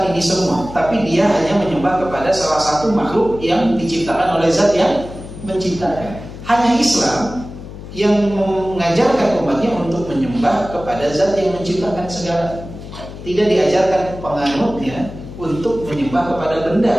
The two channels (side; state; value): left; noise; hum, 13 dB below the sound